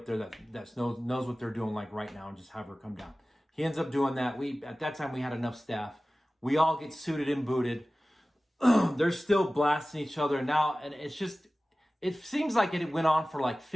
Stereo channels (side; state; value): both; normal; correlation 0.97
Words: there that knows what they're doing like right now, and just have her come down. He ends up doing that. At that time we had enough staff. We all get suited and booted. they're still blasting each other now. And it seems like it went on for like